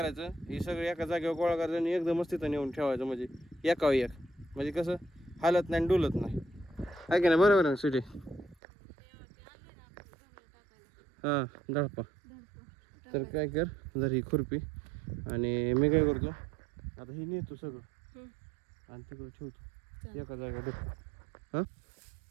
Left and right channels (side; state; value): left; drops out; at 8.6 s